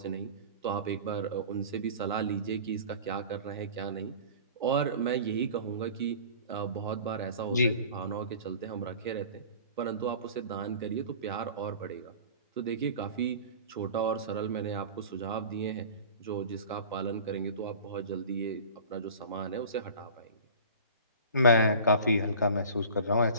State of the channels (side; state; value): both; inverted; correlation -0.41